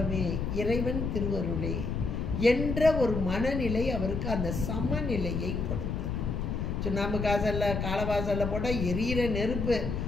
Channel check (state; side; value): noise; left; rumble, 2 dB below the sound